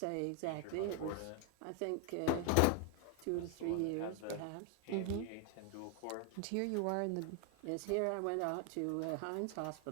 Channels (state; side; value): different; both; correlation 0.00